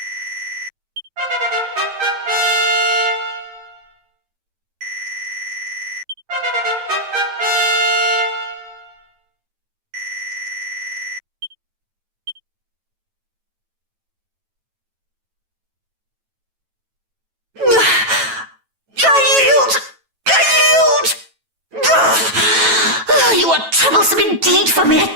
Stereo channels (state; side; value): late; left; 9.1 ms